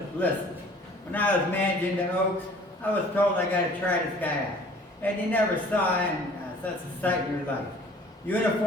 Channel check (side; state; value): both; normal; correlation 0.51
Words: Listen, when I was managing the Oaks, I was told I got to try this guy out. And you never saw him such a sight in your life.